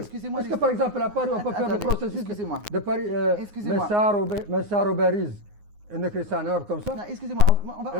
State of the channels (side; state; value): left; late; 9.6 ms